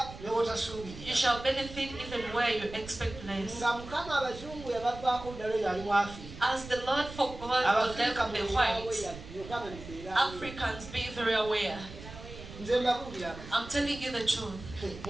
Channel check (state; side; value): noise; right; rumble, 13 dB below the sound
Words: You shall benefit even where you expect less. As the Lord forgot or left the whites, Africans be very aware. I'm telling you the truth.